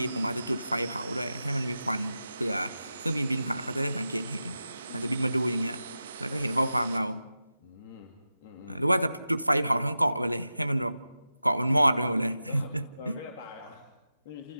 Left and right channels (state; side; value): inverted; both; correlation -0.93